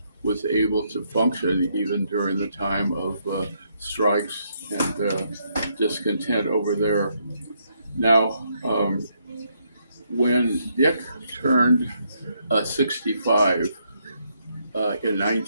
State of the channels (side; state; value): both; inverted; correlation -0.75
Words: was able to function even during the time of strikes and discontent over there. Now, when Dick turned 65 in